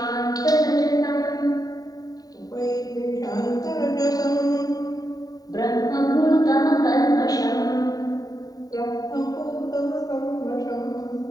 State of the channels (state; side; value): late; right; 0.18 ms